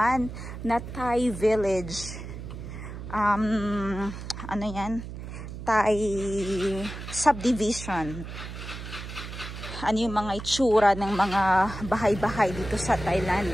na Thai village. Ano yan? Thai subdivision. Ano yung mga itsura ng mga bahay-bahay dito sa Thailand.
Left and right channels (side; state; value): right; noise; hum, 10 dB below the sound